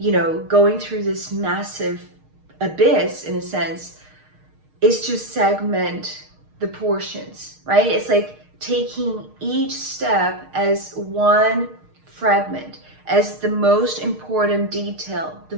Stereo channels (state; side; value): late; left; 6.5 ms